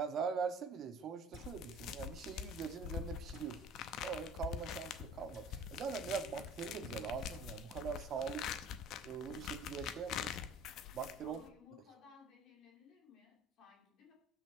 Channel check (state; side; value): normal; both; correlation 0.46